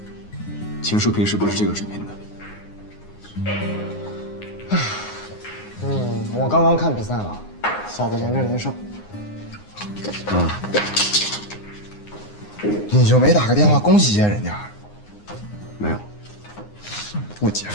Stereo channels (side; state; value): right; late; 9.7 ms